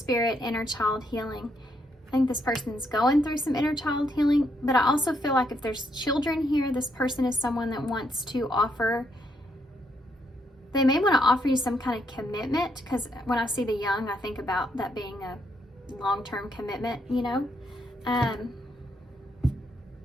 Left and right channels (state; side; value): normal; both; correlation 0.76